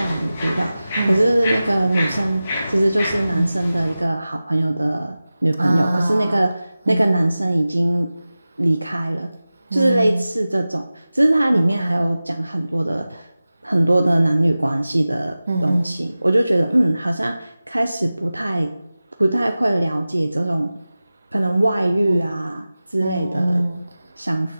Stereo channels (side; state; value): both; inverted; correlation -0.96